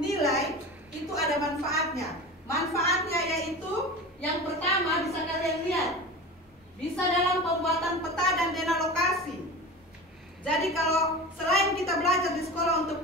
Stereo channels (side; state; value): both; normal; correlation 0.32